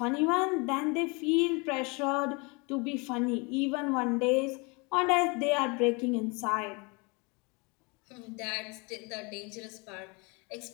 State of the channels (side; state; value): right; quieter; 29.6 dB